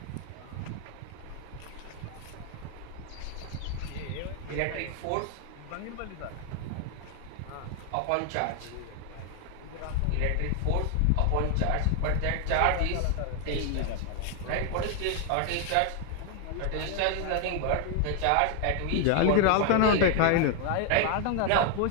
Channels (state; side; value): different; both; correlation 0.00